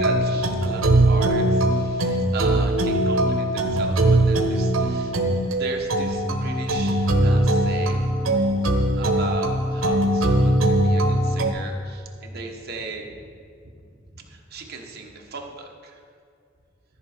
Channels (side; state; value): both; normal; correlation 0.55